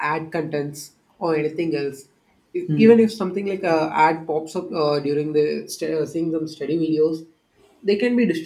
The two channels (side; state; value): both; identical; correlation 1.00